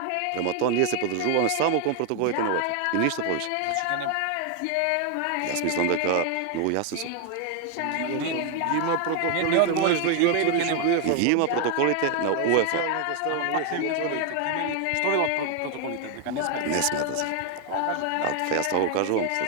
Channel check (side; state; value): both; different; correlation 0.01